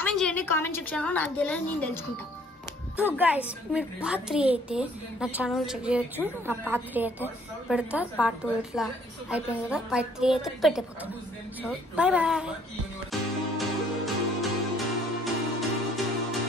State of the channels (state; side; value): normal; both; correlation 0.61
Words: చేయండి, కామెంట్ సెక్షన్లో. నాకు తెలియదు, నేను తెలుసుకుంటా. సో గైస్ మీరు పార్ట్ 3 అయితే నా ఛానల్ చెక్ చేయొచ్చు. నా పార్ట్ 3 అయితే పెడతా, పార్ట్ 2 ఇట్లా అయిపోయింది కదా, పార్ట్ 3 అయితే పెట్టిపోతాను. So bye.